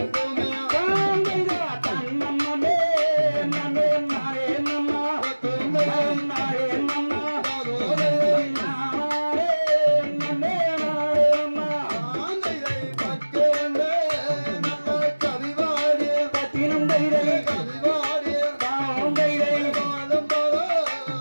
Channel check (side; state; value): both; inverted; correlation -1.00